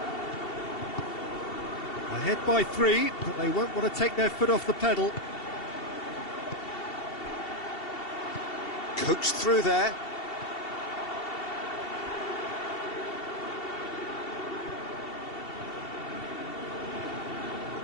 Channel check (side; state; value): right; late; 2.7 ms